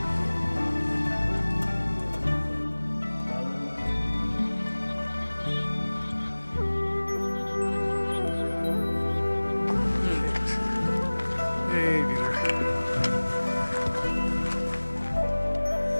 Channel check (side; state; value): both; inverted; correlation -1.00